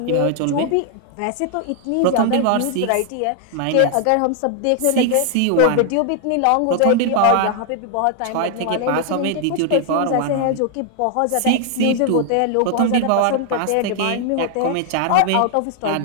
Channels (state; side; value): different; both; correlation 0.00